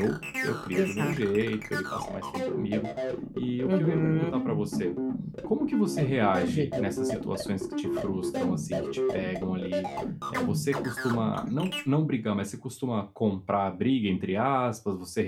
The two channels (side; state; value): both; identical; correlation 1.00